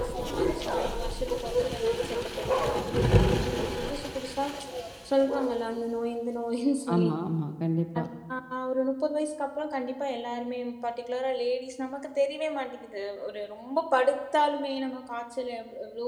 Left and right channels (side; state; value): both; identical; correlation 1.00